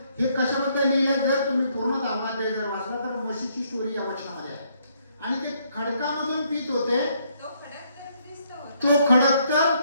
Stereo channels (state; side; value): inverted; both; correlation -0.70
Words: हे कशाबद्दल लिहिलंय? जर तुम्ही पूर्ण 10 अध्याय जर वाचला तर मोशेची स्टोरी या वचनामध्ये आहे. आणि ते खडकामधून पित होते. तो खडक तर